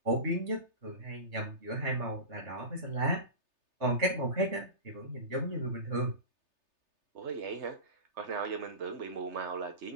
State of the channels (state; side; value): late; left; 3.3 ms